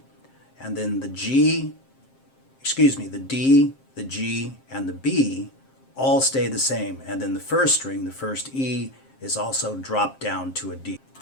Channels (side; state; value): right; late; 7.5 ms